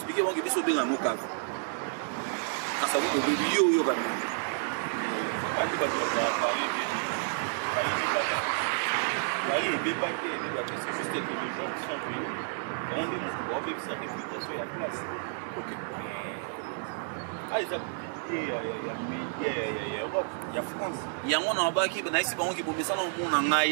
bon que biso benga moka Kasavu baby yo ga mi ati ba to parler c'est juste que les gens qui sont venus rendez-vous pour avoir sa réputation et la place. Ok. Ah, ils ont ya France. Yango na baki na isi bango ki bomisa na mona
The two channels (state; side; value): silent; left; digital silence